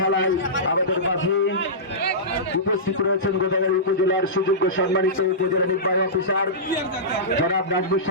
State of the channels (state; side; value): normal; both; correlation -0.17